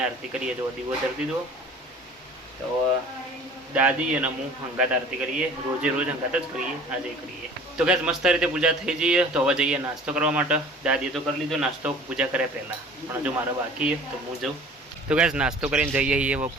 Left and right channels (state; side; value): normal; both; correlation 0.46